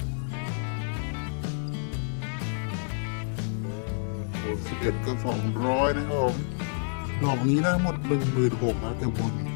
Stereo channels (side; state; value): right; silent; 56 dB below the other